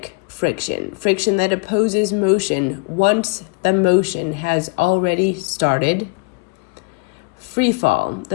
friction, friction that opposes motion once the motion has already started. Free fall,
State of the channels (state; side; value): quieter; right; 28.4 dB